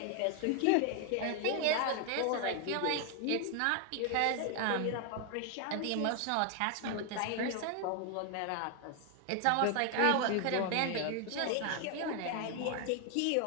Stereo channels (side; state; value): both; different; correlation 0.00